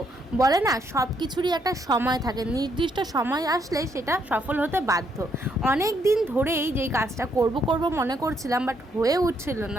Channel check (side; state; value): both; normal; correlation 0.73